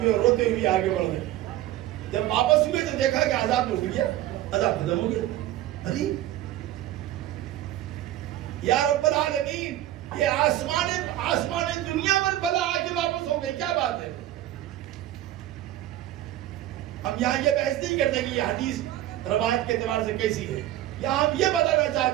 اور روتے ہوئے آگے بڑھ گئے. جب واپس ہوئے تو دیکھا کہ عذاب رک گیا, عذاب ختم ہو گیا. ارے یا رب العالمین, یہ آسمان دنیا پر بلا آ کے واپس ہو گئی, کیا بات ہے؟ ہم یہاں یہ بحث نہیں کرتے کہ یہ حدیث روایت کے اعتبار سے کیسی ہے. یہاں ہم یہ بتانا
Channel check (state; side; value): quieter; left; 13.7 dB